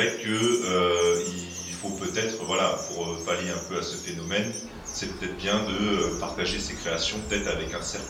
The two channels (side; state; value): both; identical; correlation 1.00